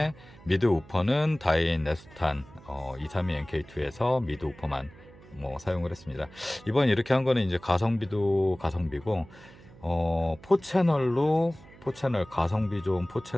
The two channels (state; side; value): noise; right; hum, 22 dB below the sound